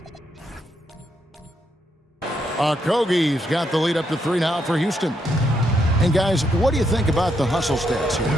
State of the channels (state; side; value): normal; both; correlation 0.78